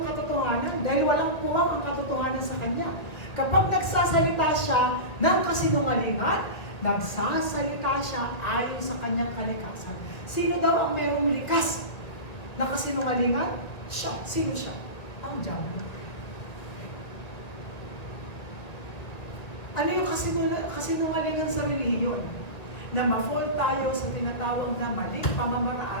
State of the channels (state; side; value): late; right; 1.9 ms